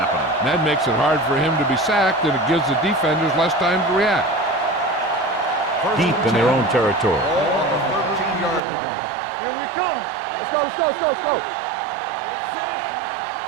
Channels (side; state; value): left; drops out; at 8.6 s